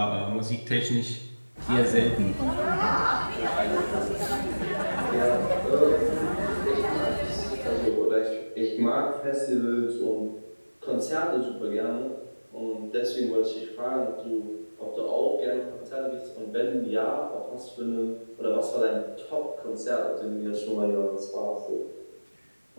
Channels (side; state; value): both; inverted; correlation -1.00